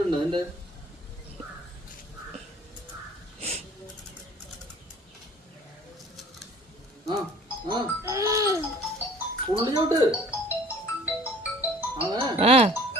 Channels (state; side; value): normal; both; correlation 0.50